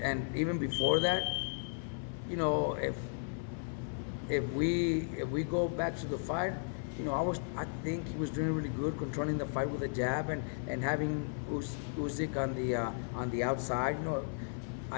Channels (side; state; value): right; silent; 54 dB below the other